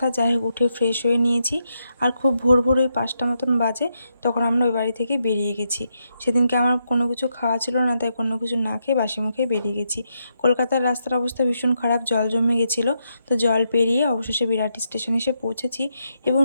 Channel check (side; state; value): both; inverted; correlation -0.82